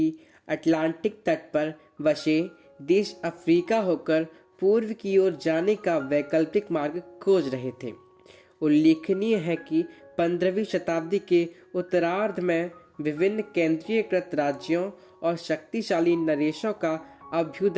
अटलांटिक तट पर बसे देश अफ्रीका होकर पूर्व की ओर जाने का वैकल्पिक मार्ग खोज रहे थे। उल्लेखनीय है कि 15वीं शताब्दी के उत्तरार्ध में विभिन्न केंद्रीयकृत राज्यों और शक्तिशाली नरेशों का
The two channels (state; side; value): identical; both; correlation 1.00